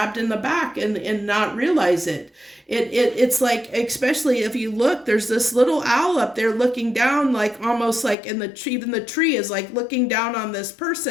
in the back and not realize it. It's like, especially if you look, there's this little owl up there looking down, like almost like in the tree, even the tree is like looking down on this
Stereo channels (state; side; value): drops out; right; at 8.2 s